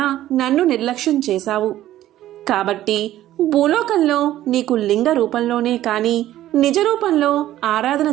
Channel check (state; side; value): quieter; left; 13.6 dB